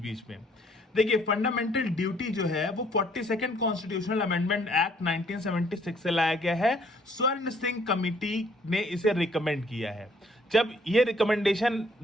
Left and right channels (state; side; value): normal; both; correlation 0.63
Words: में। देखिए, फंडामेंटल ड्यूटी जो है वो 42nd कॉन्स्टिट्यूशनल अमेंडमेंट एक्ट 1976 से लाया गया है। स्वर्ण सिंह कमिटी ने इसे रिकमेंड किया है। जब ये रिकमेंडेशन